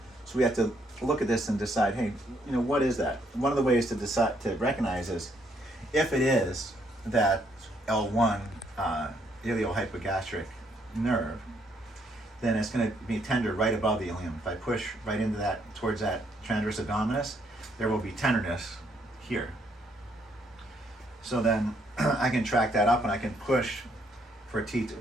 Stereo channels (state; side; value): normal; both; correlation 0.71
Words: So we have to look at this and decide, hey, what is that? One of the ways to decide to recognize is if it is that L1 iliohypogastric nerve, then it's going to be tender right above the ilium. If I push right into that, towards that transverse abdominis, there will be tenderness here. So then I can track that up and I can push for